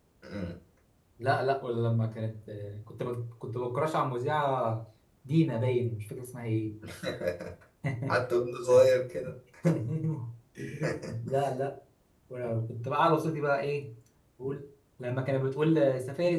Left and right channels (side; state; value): both; identical; correlation 1.00